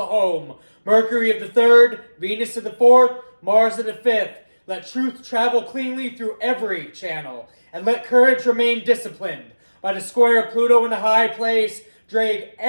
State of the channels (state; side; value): inverted; both; correlation -1.00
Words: home, Mercury of the third, Venus of the fourth, Mars of the fifth, let truth travel cleanly through every channel, and let courage remain disciplined. By the square of Pluto in the high place, drag